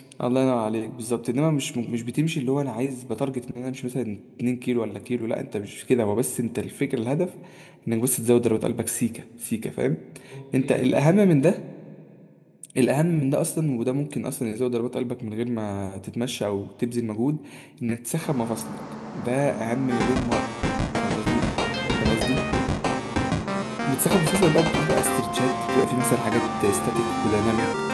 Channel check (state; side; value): identical; both; correlation 1.00